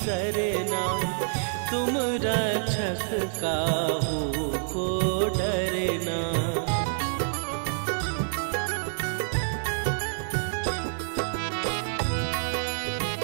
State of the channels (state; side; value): silent; left; 58 dB below the other